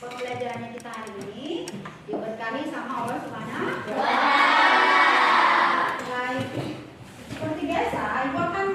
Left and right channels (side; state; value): both; identical; correlation 1.00